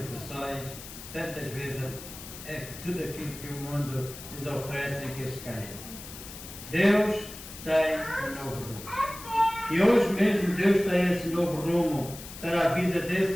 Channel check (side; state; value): left; noise; hiss, 13 dB below the sound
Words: tantas vezes é tudo aquilo que o mundo lhes oferece em que eles caem. Deus tem um novo rumo. E hoje mesmo Deus tem esse novo rumo para a vida